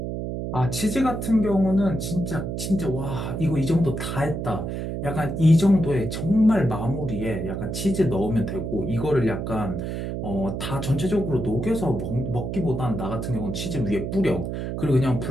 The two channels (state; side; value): noise; right; hum, 4 dB below the sound